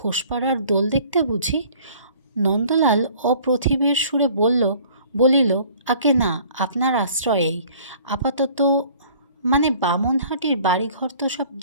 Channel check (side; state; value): both; inverted; correlation -0.52